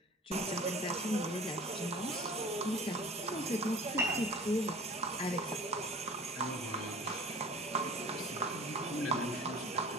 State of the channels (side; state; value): both; normal; correlation 0.43